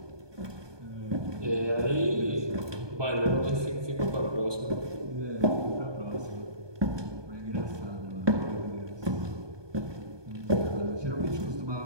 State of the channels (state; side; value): late; left; 1.2 ms